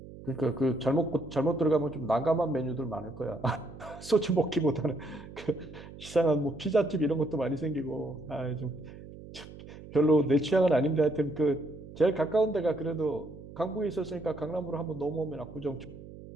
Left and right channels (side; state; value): right; noise; hum, 16 dB below the sound